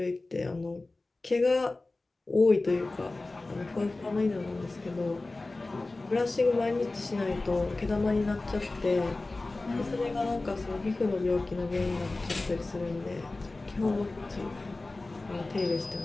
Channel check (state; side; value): quieter; right; 3.2 dB